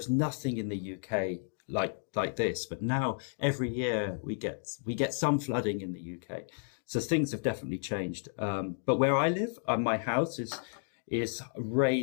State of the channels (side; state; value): right; silent; digital silence